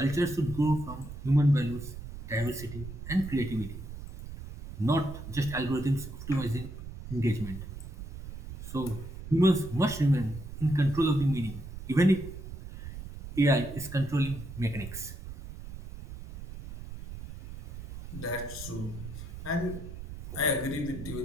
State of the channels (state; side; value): noise; right; rumble, 11 dB below the sound